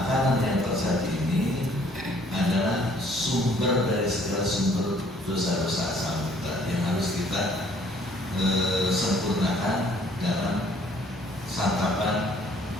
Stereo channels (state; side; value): normal; both; correlation 0.60